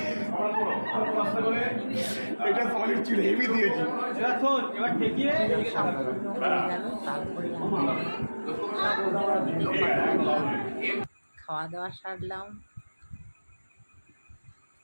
এটা সলিড ছিল হেভি দিয়েছি এবার ঠেকিয়ে গেল, তারপরে খাওয়া দাওয়া সারলাম,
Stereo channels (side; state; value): both; inverted; correlation -1.00